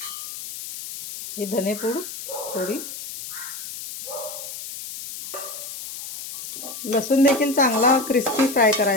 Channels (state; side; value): noise; left; hiss, 10 dB below the sound